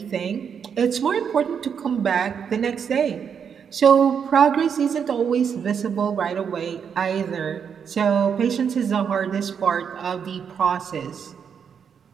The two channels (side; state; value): left; quieter; 7.2 dB